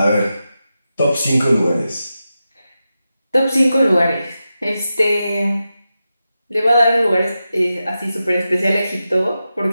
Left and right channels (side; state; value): both; inverted; correlation -0.91